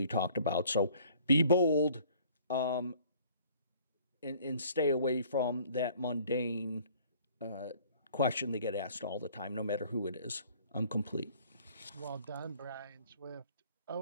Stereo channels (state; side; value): inverted; both; correlation -0.55